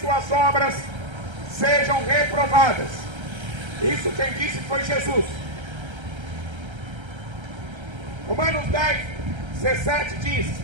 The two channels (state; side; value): late; left; 1.3 ms